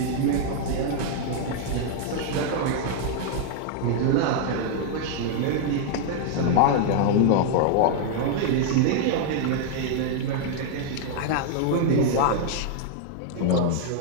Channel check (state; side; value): different; both; correlation -0.01